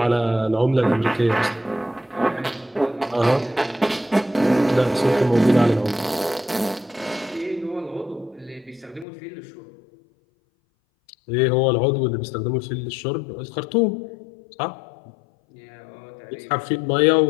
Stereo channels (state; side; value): drops out; right; at 9.1 s